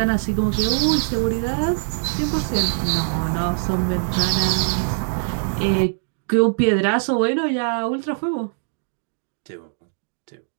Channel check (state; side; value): silent; left; digital silence